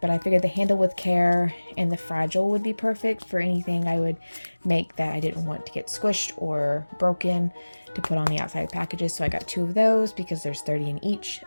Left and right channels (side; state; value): both; inverted; correlation -1.00